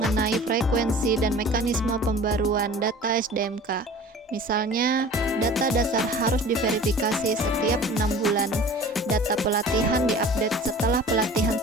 frekuensi dan mekanisme pembaruan data SDMK. Misalnya, data dasar harus diverifikasi setiap 6 bulan, data pelatihan diupdate setelah pelatihan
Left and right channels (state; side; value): normal; both; correlation 0.43